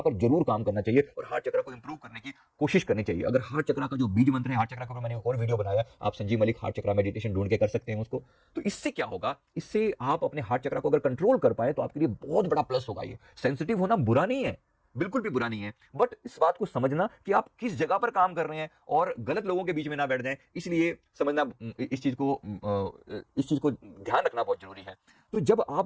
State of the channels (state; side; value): identical; both; correlation 1.00